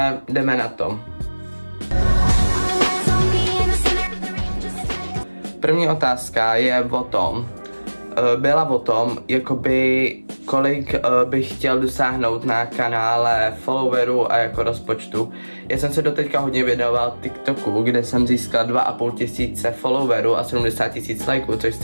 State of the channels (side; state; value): both; inverted; correlation -1.00